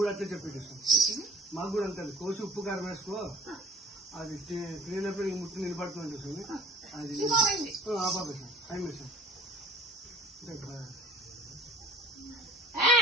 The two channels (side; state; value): both; normal; correlation 0.47